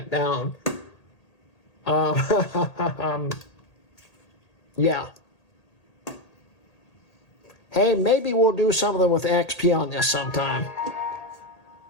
down. Yeah. Hey, maybe we'll do something with XP on this sometime.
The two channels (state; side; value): late; right; 1.8 ms